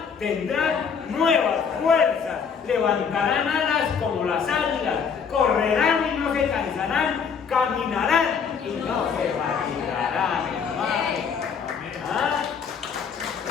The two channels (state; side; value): quieter; right; 6.4 dB